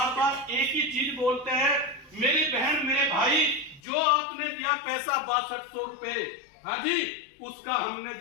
एक ही चीज बोलते हैं, मेरी बहन मेरे भाई, जो आपने दिया पैसा 6200 रुपए, उसका हमने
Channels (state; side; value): drops out; right; at 3.8 s